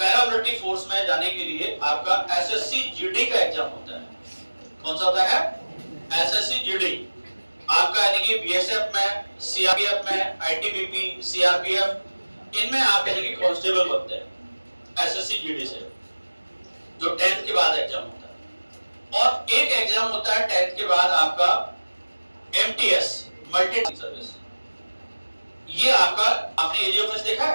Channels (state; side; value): inverted; both; correlation -1.00